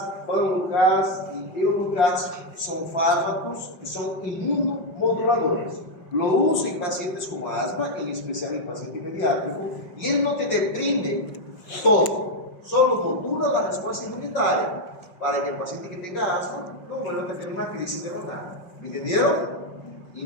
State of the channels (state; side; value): late; right; 5.7 ms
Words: Panlukast y Eulukast son fármacos que son inmunomoduladores. Lo uso en pacientes con asma, en especial en pacientes pediátricos, y él no te deprime todo, solo modula la respuesta inmunitaria para que el paciente que tenga asma no vuelva a tener una crisis de la nada. ¿Me entendieron?